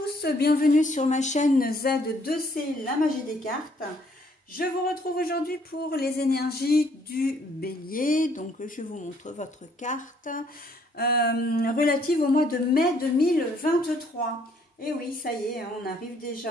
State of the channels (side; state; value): both; normal; correlation 0.65